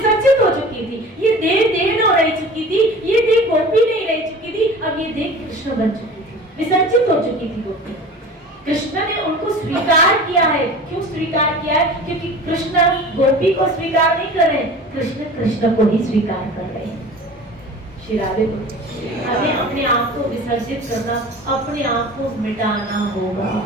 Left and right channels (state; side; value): normal; both; correlation 0.39